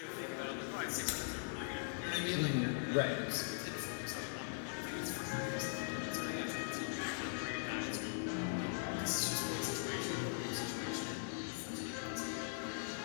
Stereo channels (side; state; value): right; silent; digital silence